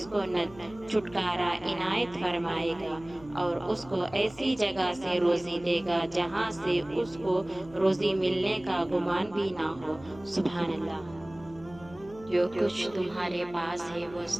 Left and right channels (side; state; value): left; noise; hum, 21 dB below the sound